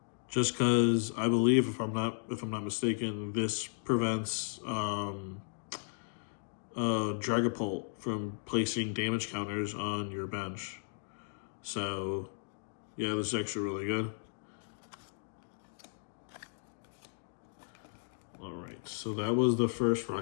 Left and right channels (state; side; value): silent; right; digital silence